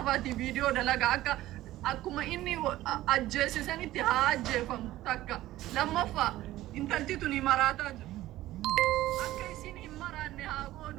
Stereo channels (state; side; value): quieter; left; 15.5 dB